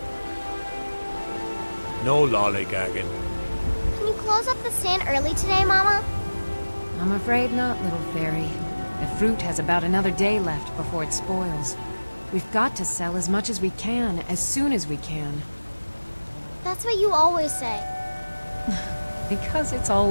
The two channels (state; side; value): inverted; both; correlation -1.00